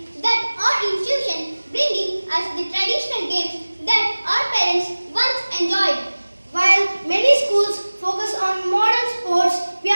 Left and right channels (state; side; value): inverted; both; correlation -1.00